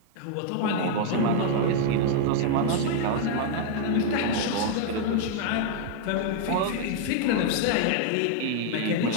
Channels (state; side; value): different; both; correlation -0.01